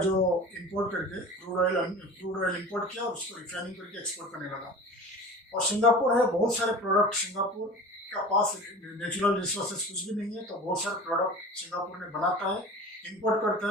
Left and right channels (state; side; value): normal; both; correlation 0.37